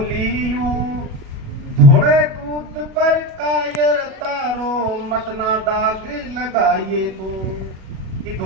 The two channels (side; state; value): left; late; 37 ms